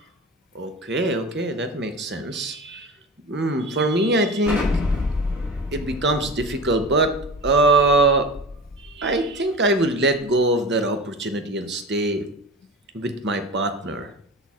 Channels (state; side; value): normal; both; correlation 0.32